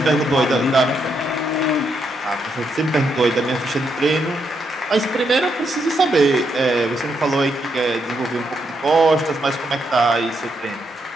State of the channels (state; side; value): normal; both; correlation 0.79